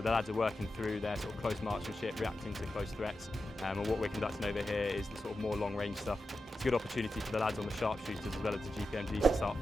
lads are working through their sort of close marksmanship, reacting to close threats. And what we're conducting over here is the sort of more long range stuff. It's a good opportunity for the lads on the sharpshooters as well as the GPMGs to start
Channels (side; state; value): both; normal; correlation 0.90